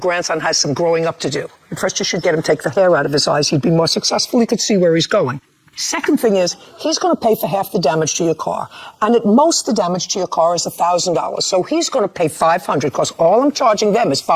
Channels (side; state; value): both; identical; correlation 1.00